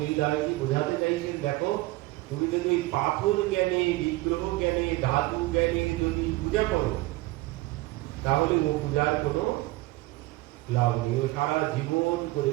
বোঝাতে চাইছেন, দেখো তুমি যদি ওই পাথর জ্ঞানে, বিগ্রহ জ্ঞানে, ধাতু জ্ঞানে যদি পূজা করো তাহলে ও পূজার কোনো লাভ নেই, ও সারা জীবন করে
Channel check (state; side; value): quieter; left; 19.8 dB